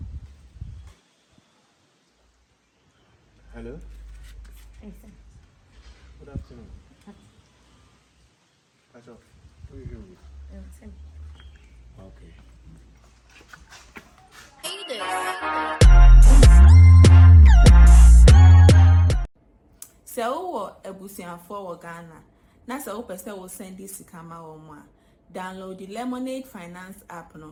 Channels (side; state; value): both; identical; correlation 1.00